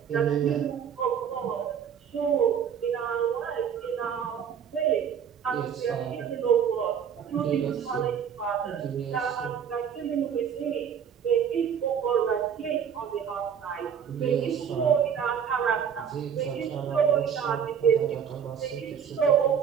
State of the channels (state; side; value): quieter; left; 7.9 dB